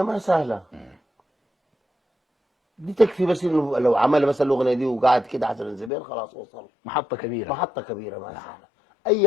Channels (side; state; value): right; drops out; at 5.9 s